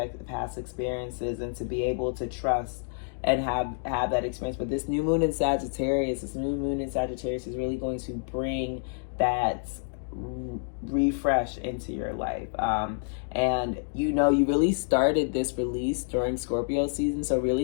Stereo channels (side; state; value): right; silent; digital silence